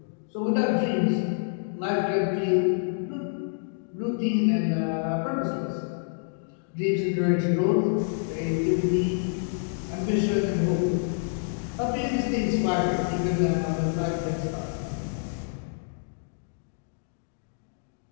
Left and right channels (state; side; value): silent; right; digital silence